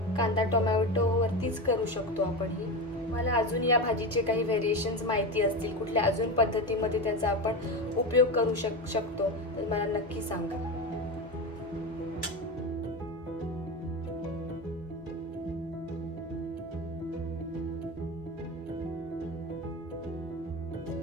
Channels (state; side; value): normal; both; correlation 0.20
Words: कांदा टोमॅटो वरतीच करू शकतो आपण ही. मला अजून या भाजीचे काही व्हेरिएशन्स माहिती असतील, कुठल्या अजून पद्धतीमध्ये त्याचा आपण उपयोग करू शकतो तर मला नक्की सांगा.